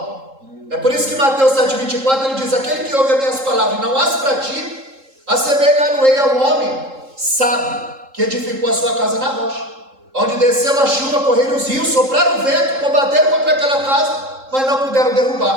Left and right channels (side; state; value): left; late; 3.7 ms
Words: É por isso que Mateus 7,24 ele diz: aquele que ouve as minhas palavras e não as pratica, assemelhar-no-ei ao homem sábio que edificou a sua casa na rocha, onde desceu a chuva, correram os rios, sopraram o vento, combateram contra aquela casa, mas não puderam